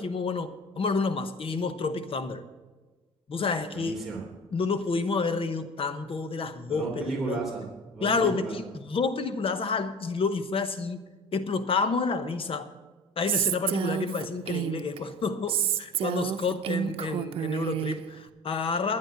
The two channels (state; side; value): normal; both; correlation 0.39